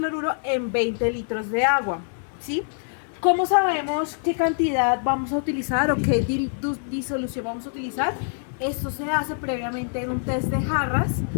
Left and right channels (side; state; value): right; silent; digital silence